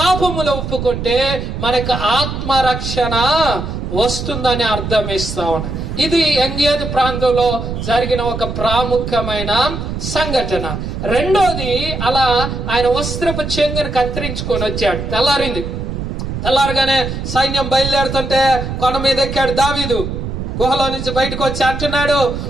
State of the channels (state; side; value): noise; right; rumble, 5 dB below the sound